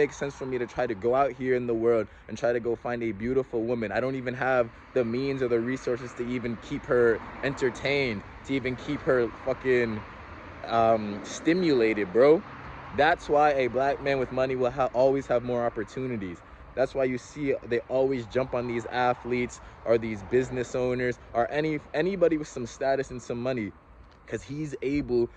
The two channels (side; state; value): both; identical; correlation 1.00